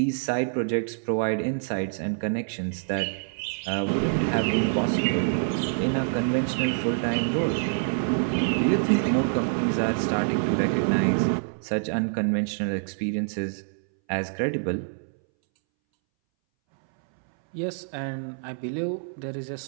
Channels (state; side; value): silent; left; 61 dB below the other